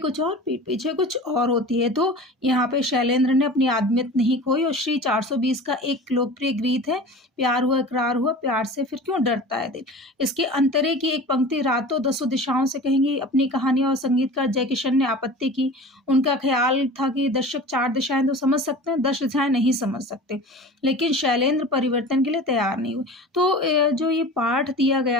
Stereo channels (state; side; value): normal; both; correlation 0.37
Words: और पीठ पीछे कुछ और होती है, तो यहाँ पे शैलेंद्र ने अपनी आदमियत नहीं खोई और श्री 420 का एक लोकप्रिय गीत है, प्यार हुआ इकरार हुआ, प्यार से फिर क्यों डरता है दिल। इसके अंतरे की एक पंक्ति रातों दसों दिशाओं से कहेंगी अपनी कहानी और संगीतकार जयकिशन ने आपत्ति की। उनका ख़्याल था कि दर्शक 4 दिशाएँ तो समझ सकते हैं, 10 दिशाएँ नहीं समझ सकते। लेकिन शैलेंद्र परिवर्तन के लिए तैयार नहीं हुए। तो जो ये पाठ दिया